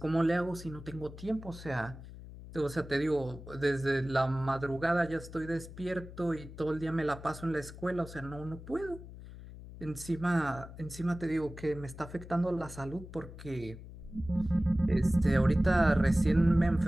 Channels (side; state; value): left; noise; hum, 14 dB below the sound